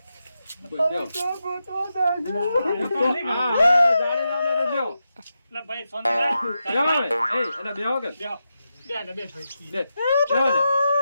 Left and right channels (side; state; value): both; inverted; correlation -0.88